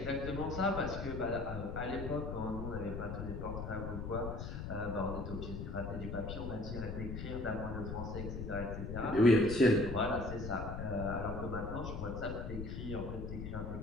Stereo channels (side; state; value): left; noise; rumble, 5 dB below the sound